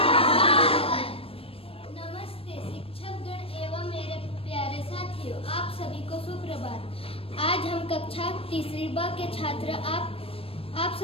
नमस्ते शिक्षकगण एवं मेरे प्यारे साथियों, आप सभी को सुप्रभात। आज हम कक्षा तीसरी ब के छात्र आप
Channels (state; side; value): late; right; 0.28 ms